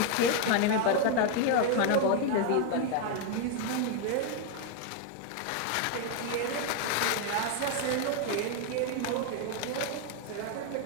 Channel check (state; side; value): different; both; correlation 0.01